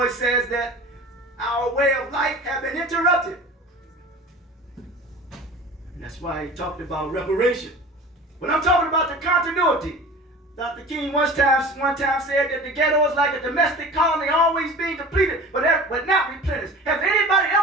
says that our way of life has been interrupted. And that's why he talked about reparation. But I'm talking about the continuity. Dr. King one time said that the ghetto is like a domestic colony always being depleted, but not replenished. Has anybody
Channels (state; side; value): normal; both; correlation 0.38